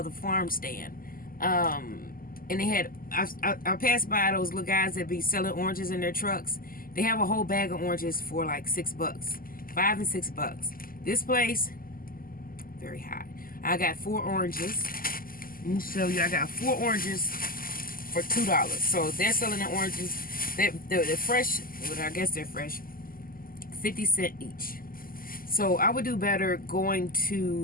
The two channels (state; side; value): late; right; 0.42 ms